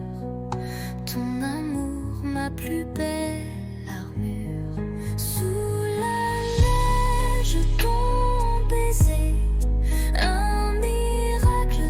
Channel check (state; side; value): identical; both; correlation 1.00